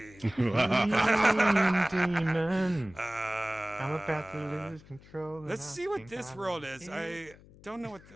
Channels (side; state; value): left; noise; hum, 23 dB below the sound